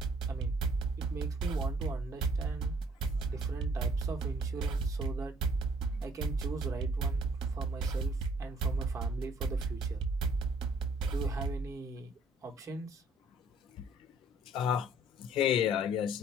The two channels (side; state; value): both; normal; correlation 0.59